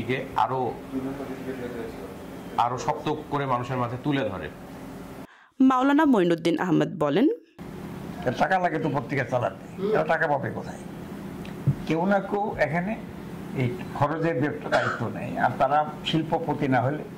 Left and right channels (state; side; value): identical; both; correlation 1.00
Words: আরো শক্ত করে মানুষের মাঝে তুলে ধরে। মাওলানা মঈনুদ্দিন আহমেদ বলেন, টাকা লাগে তো পত্রিকা চালাতে, এরা টাকা পাবে কোথায়? কেউ না কেউ এখানে এই খরচের দায়িত্ব নেই। আর তারা শিল্পপতি না হলে,